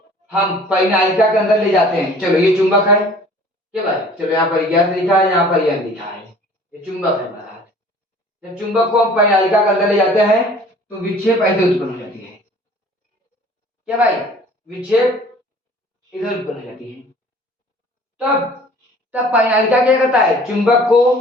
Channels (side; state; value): both; normal; correlation 0.50